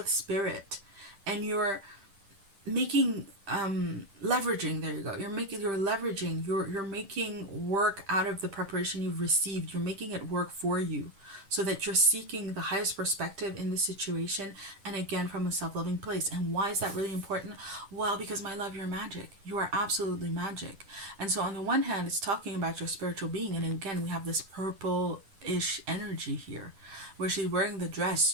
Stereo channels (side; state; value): left; late; 10 ms